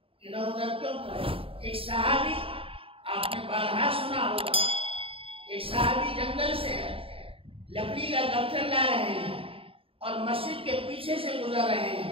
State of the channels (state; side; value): late; left; 0.27 ms